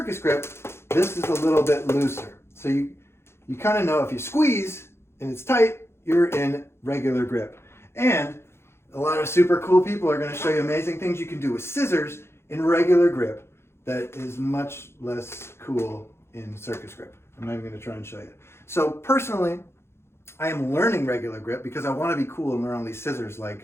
Grip, this is a little bit looser. So you kind of know if you squeeze and it's tight, you're in regular grip. And a lot of super cool people are going to show you amazing things you can do with scissors in regular grip that is much less cool in Circus Grip. I'm not even going to try and show you. So personally, I am learning regular grip because I want to be cool and learn all these scissors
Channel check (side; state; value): right; late; 0.12 ms